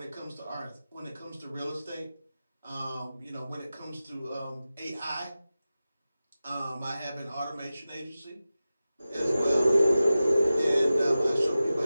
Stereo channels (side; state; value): both; inverted; correlation -0.95